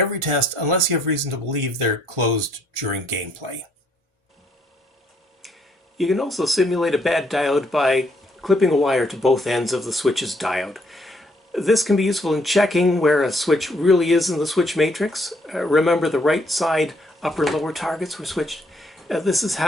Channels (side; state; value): both; normal; correlation 0.69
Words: test unless you have reason to believe they're closed during gameplay. You can also simulate a bad diode by clipping a wire to both ends of the switch's diode. This can be useful in checking where a switch really is in the switch matrix. Remember, the right side upper and lower targets were switched. This is